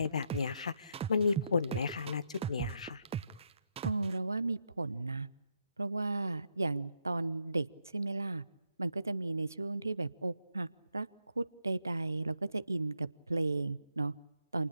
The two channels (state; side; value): inverted; both; correlation -0.79